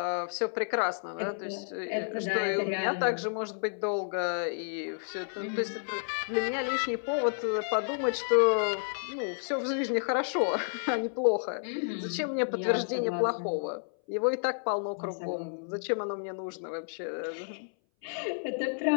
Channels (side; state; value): right; silent; 57 dB below the other